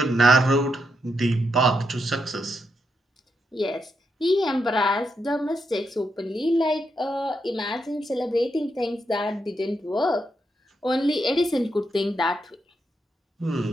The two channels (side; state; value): both; normal; correlation 0.82